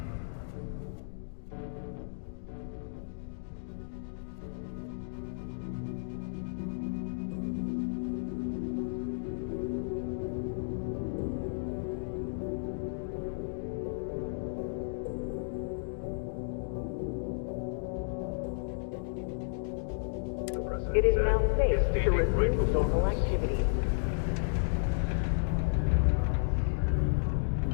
It is now safe to resume normal activity.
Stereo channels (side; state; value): right; silent; digital silence